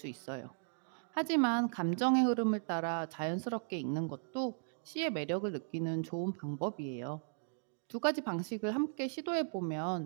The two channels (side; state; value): left; silent; digital silence